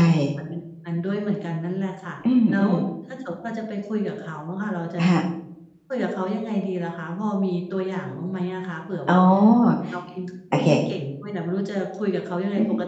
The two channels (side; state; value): both; identical; correlation 1.00